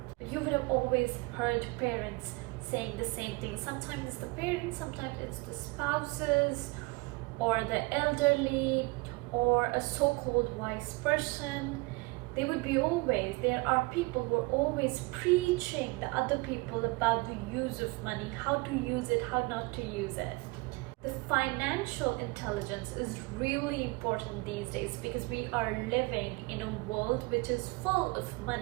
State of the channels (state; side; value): quieter; left; 25.1 dB